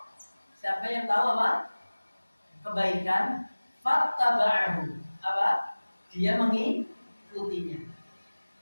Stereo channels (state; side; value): inverted; both; correlation -1.00